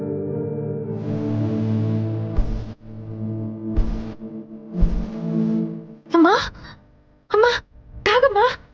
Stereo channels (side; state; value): both; identical; correlation 1.00